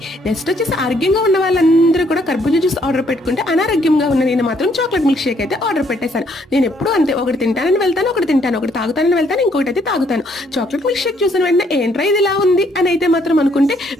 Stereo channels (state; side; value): normal; both; correlation 0.68